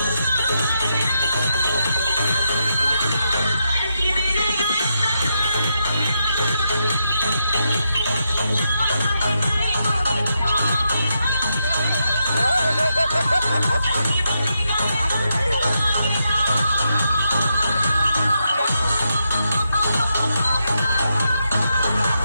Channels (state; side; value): inverted; both; correlation -0.83